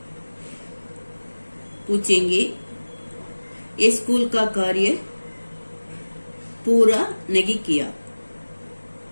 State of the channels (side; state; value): both; inverted; correlation -1.00